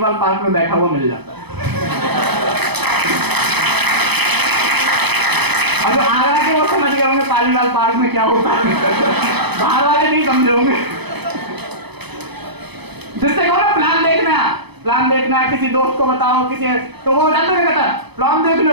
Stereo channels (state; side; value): late; left; 0.98 ms